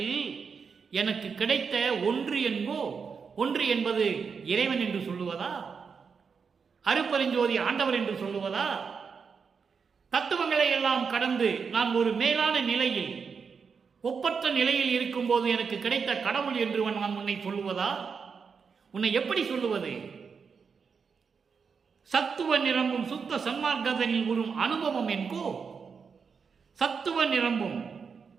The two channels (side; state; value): left; quieter; 5.8 dB